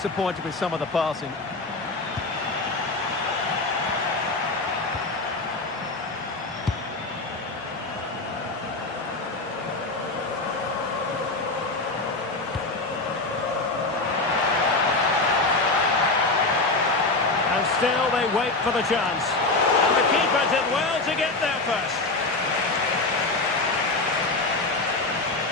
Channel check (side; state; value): right; quieter; 3.3 dB